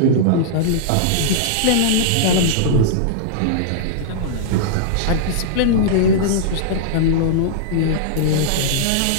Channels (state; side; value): different; both; correlation -0.02